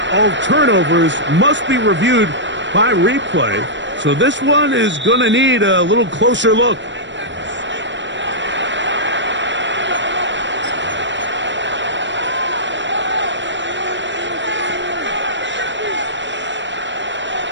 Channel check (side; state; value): left; late; 0.53 ms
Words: all turnovers must be reviewed by replay. So this one is going to need a little closer look.